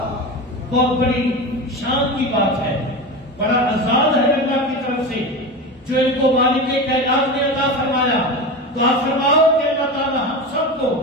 بہت بڑی شان کی بات ہے, بڑا اعزاز ہے اللہ کی طرف سے جو ان کو مالک کائنات نے عطا فرمایا. دعا فرماؤ کہ اللہ تعالی ہم سب کو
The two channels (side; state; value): both; normal; correlation 0.24